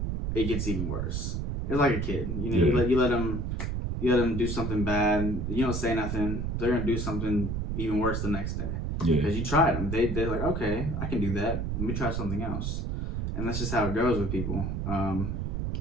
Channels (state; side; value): noise; right; rumble, 2 dB below the sound